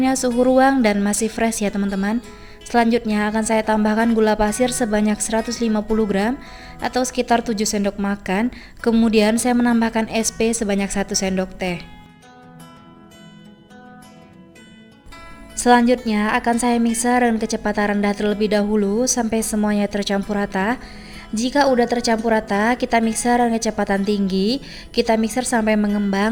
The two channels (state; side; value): identical; both; correlation 1.00